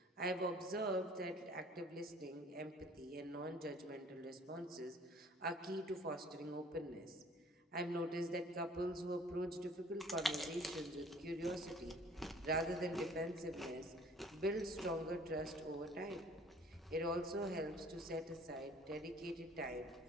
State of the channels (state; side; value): normal; both; correlation 0.53